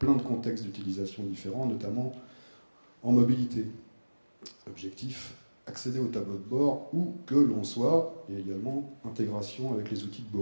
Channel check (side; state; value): both; inverted; correlation -1.00